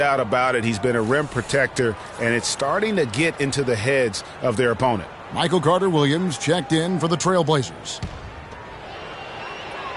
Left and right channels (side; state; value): both; identical; correlation 1.00